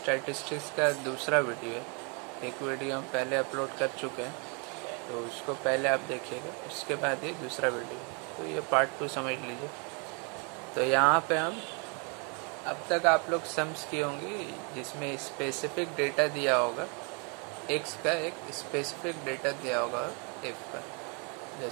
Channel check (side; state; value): left; quieter; 34.9 dB